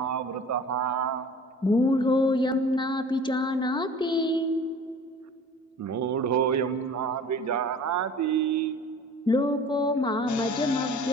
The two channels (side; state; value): both; normal; correlation 0.44